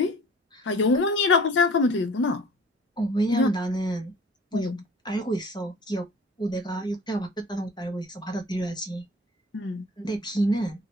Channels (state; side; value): normal; both; correlation 0.45